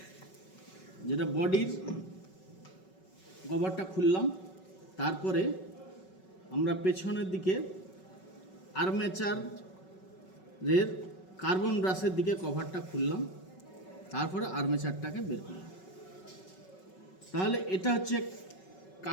যেটা বডির কভারটা খুললাম, তারপরে আমরা পেছনের দিকে আর্মেচারের কার্বন ব্রাশের দিকে কভারটা খুললাম, তারপরে আর্মেচারটাকে বের করলাম। তাহলে এটা হচ্ছে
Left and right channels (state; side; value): late; right; 5.3 ms